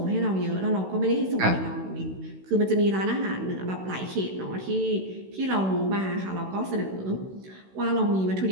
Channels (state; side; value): late; left; 16 ms